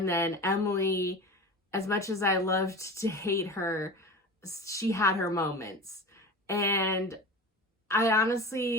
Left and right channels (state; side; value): normal; both; correlation 0.32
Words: then Emily, as much as I loved to hate her, she had her moments. And I